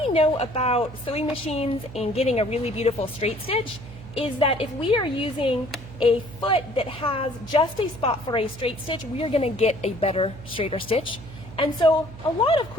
know about sewing machines and getting a really beautiful straight stitch is that if we are using a foot that has just a spot for a straight stitch, we are going to get a better straighter stitch. And so a lot of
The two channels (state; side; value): noise; right; hum, 15 dB below the sound